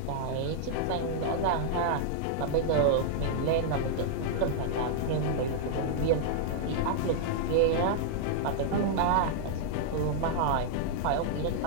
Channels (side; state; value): both; different; correlation -0.01